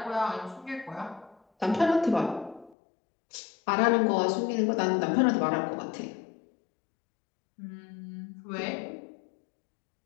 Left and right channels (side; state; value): right; drops out; at 2.8 s